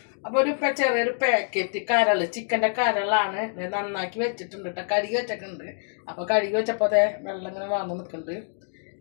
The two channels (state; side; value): silent; right; digital silence